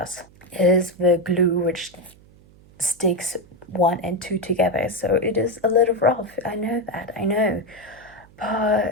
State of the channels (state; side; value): noise; right; hum, 26 dB below the sound